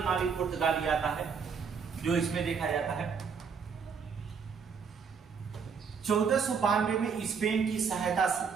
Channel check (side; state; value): left; quieter; 6.0 dB